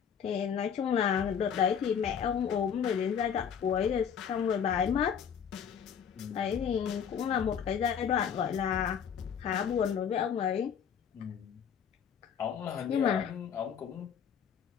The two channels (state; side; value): quieter; right; 7.7 dB